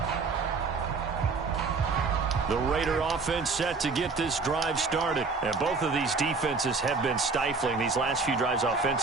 The Raider offense set to get this drive started. And both of these defenses have been stifling these last few drives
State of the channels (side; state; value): left; quieter; 4.4 dB